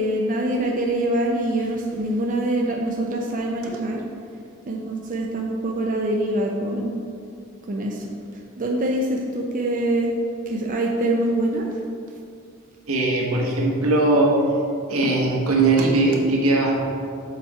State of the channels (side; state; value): both; normal; correlation 0.35